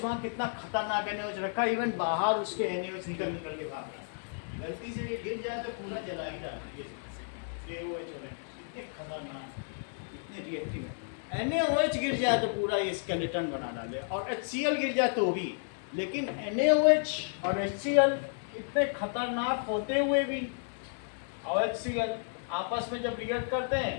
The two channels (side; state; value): right; silent; digital silence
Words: वहाँ कितना खतरनाक NaOH रखा, इवन बाहर उसके NaOH निकल निकल के भाग रहा है, गलती से ये गिर जाए तो पूरा जला ही जाता है। ये OH इतने खतरनाक, इतने रिएक्टिव है। NaOH गिर जाए तो पूरा ये स्केलेटन बना डाले, और HCl गिर जाए तो भी। लेकिन NaOH और HCl इतने खतरनाक होते हुए भी, और HCl आपस में जब रिएक्ट करते